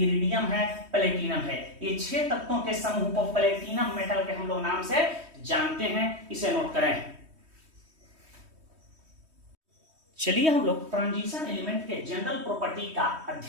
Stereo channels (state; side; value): late; left; 3.2 ms